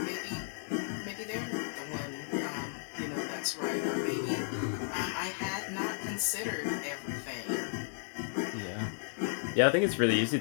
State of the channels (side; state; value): right; silent; digital silence